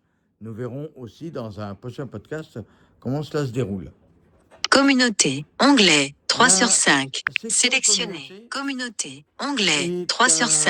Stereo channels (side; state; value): both; identical; correlation 1.00